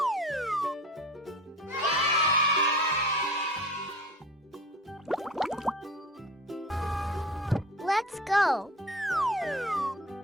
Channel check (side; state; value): both; normal; correlation 0.38